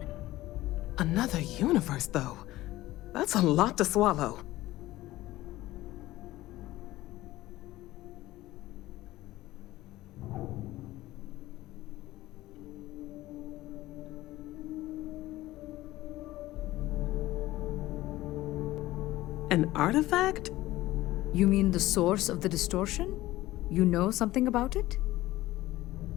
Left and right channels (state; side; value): quieter; right; 16.8 dB